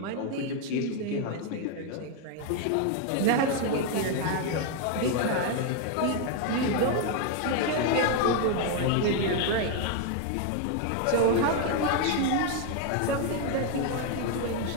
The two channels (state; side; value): different; both; correlation 0.01